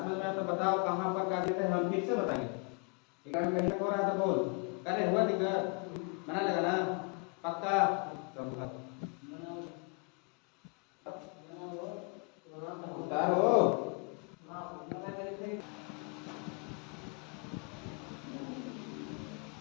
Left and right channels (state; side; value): quieter; right; 36.1 dB